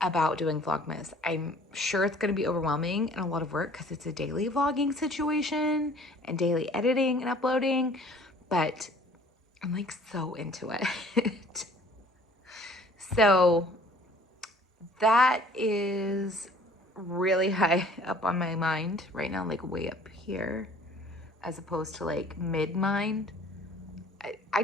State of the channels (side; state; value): both; normal; correlation 0.53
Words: about doing Vlogmas. I'm sure it's going to be overwhelming and a lot of work because it's a daily vlogging situation and daily editing and uploading, but I'm like so into it. So that is really high up on my mind right now, like way up here, as opposed to like mid-mind. I